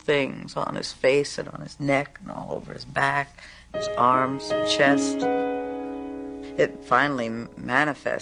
things on his face and on his neck and all over his back, his arms, chest. It finally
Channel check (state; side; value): identical; both; correlation 1.00